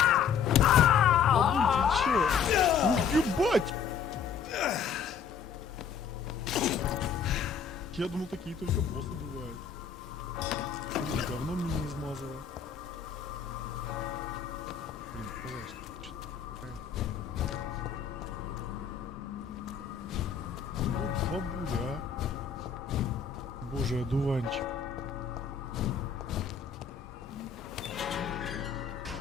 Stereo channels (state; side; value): quieter; right; 6.9 dB